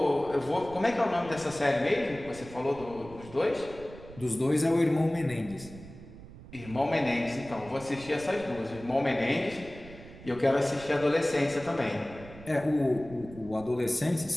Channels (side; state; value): right; noise; rumble, 17 dB below the sound